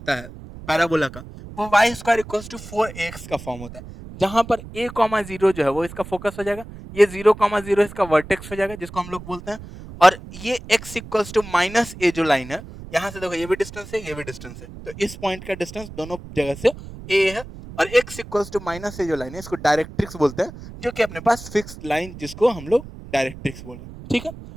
है पैराबोला का, वो Y square equals to 4ax का फॉर्म होता है, जहां पर a कॉमा 0 जो है वो इसका फोकस हो जाएगा, ये 0 कॉमा 0 इसका वर्टेक्स हो जाएगा जिसको हम लोग बोलते हैं, और ये x equals to minus a जो लाइन है, यहां से देखो ये भी डिस्टेंस है ये भी डिस्टेंस है, तो इस पॉइंट का डिस्टेंस दोनों जगह से a है, और x equals to minus a जो लाइन है इसको डायरेक्ट्रिक्स बोलते हैं, जो कि अपने पास फिक्स्ड लाइन जिसको हम लोग डायरेक्ट्रिक्स बोल रहे हैं। ठीक है,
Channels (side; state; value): right; noise; rumble, 14 dB below the sound